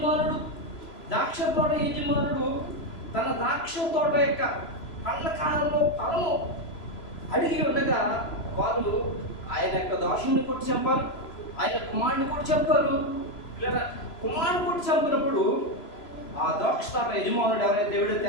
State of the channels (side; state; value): right; late; 3.0 ms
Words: తన ద్రాక్ష తోట యొక్క పండ్ల కాలంలో ఫలము అడిగి ఉండగా వారు ఆయన యొక్క దోషుని కొట్టి చంపారు, ఆయన కుమారుని కొట్టి చంపారు. లేదా కుమారుని కొట్టి చంపినప్పుడు ఆ ద్రాక్ష తోట యజమానుడు